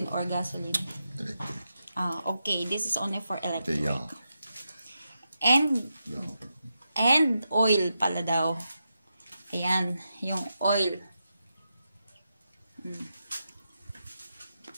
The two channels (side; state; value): both; inverted; correlation -0.87